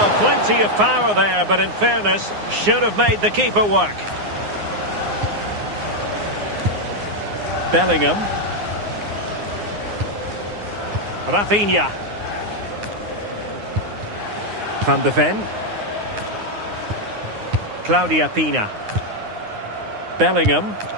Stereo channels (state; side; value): late; left; 9.7 ms